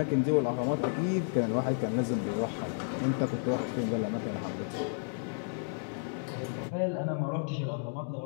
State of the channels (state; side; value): silent; right; digital silence